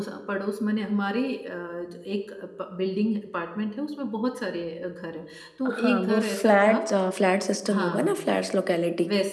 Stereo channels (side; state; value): both; identical; correlation 1.00